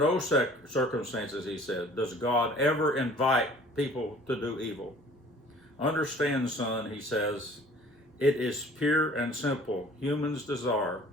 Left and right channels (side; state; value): both; normal; correlation 0.51